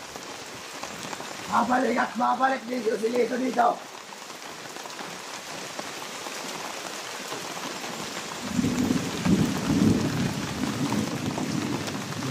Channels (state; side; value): identical; both; correlation 1.00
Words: Babalik at babalik dito, Silito dito!